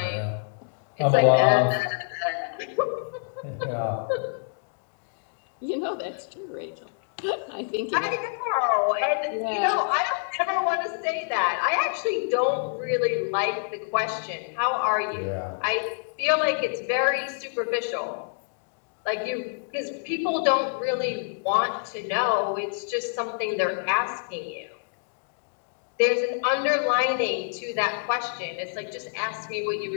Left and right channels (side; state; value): right; silent; digital silence